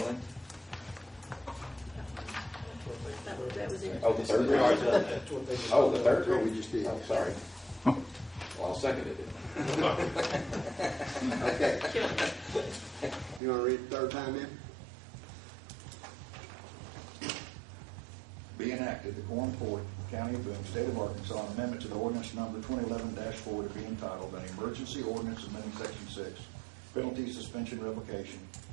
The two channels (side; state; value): left; drops out; at 13.4 s